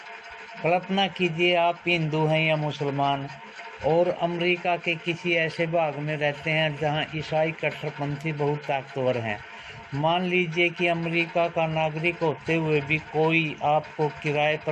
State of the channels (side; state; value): both; identical; correlation 1.00